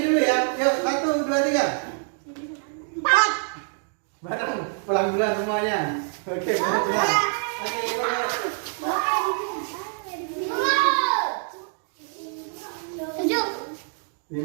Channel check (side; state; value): left; silent; 56 dB below the other